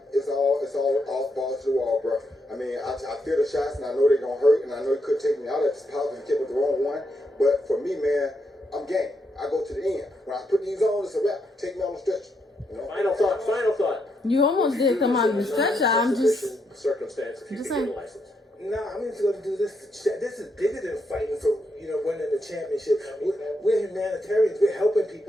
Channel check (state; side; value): normal; both; correlation 0.79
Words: it's all balls to the wall, bro. I mean, I feel the shots, and I know they're gonna hurt, and I know it could take me out at this positive tip with the wrong one. But for me, man, I'm game. I go to the end. When I put these on, it's a wrap. Take me on the stretch. You know? Final thought. You almost did come out of the stretcher. I'm just circumstance if you just can saying. get a license. No, I'm just going to do this. This is bigger than fighting for, winning the championship. We're humanitarians. We're helping